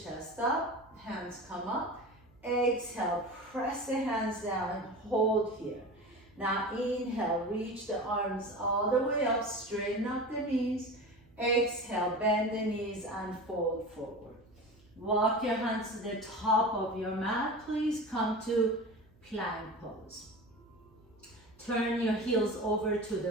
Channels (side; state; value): right; noise; hum, 29 dB below the sound